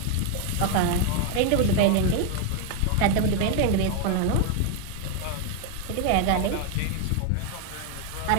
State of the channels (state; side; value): different; both; correlation 0.01